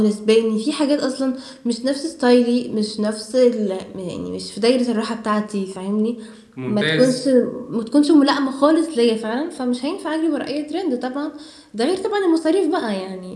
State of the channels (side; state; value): both; identical; correlation 1.00